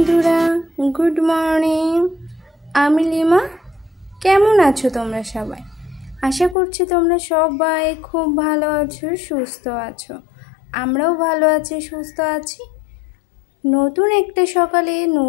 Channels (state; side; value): drops out; right; at 6.6 s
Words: good morning. আমি lima. কেমন আছো তোমরা সবাই? আশা করছি তোমরা সবাই খুব ভালো আছো, সুস্থ আছো। আমরাও ভালো আছি, সুস্থ আছি। নতুন একটা সকালে